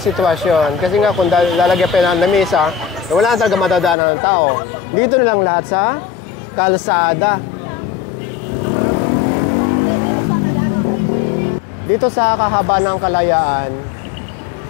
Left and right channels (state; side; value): drops out; right; at 4.0 s